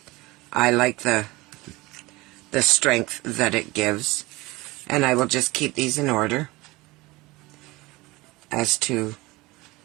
like the strength that it gives, and I will just keep these in order as to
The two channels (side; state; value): left; quieter; 21.5 dB